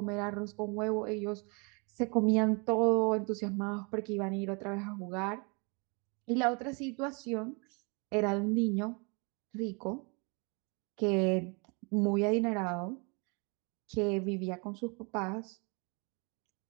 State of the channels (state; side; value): quieter; left; 32.5 dB